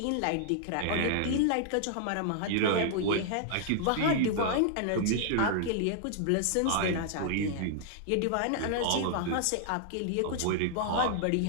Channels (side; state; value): both; different; correlation -0.01